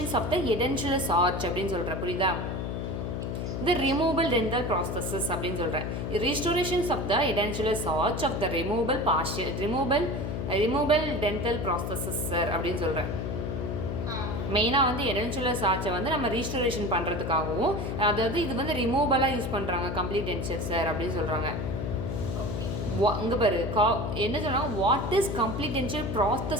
of the edentulous arch அப்படின்னு சொல்கிறேன், புரியுதா? த ரிமூவபிள் டென்டல் ப்ராசஸஸ் அப்படின்னு சொல்கிறேன். Restorations of the edentulous arch of the removable dental processes sir அப்படின்னு சொல்கிறேன். மெயினாக வந்து edentulous arch வந்து நம்ம ரீஸ்டோரேஷன் பண்ணுறதுக்காகவும், அதாவது இது வந்து ரிமூவபலாக யூஸ் பண்ணுறாங்க கம்ப்ளீட் டென்ச்சர் சார் அப்படின்னு சொல்கிறாங்க. இங்கே பாரு என்ன சொன்னாங்க, வாட் இஸ் கம்ப்ளீட் டென்ச்சர்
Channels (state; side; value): noise; left; hum, 3 dB below the sound